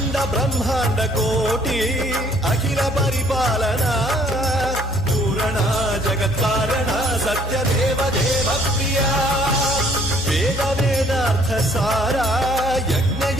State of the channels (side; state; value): both; normal; correlation 0.61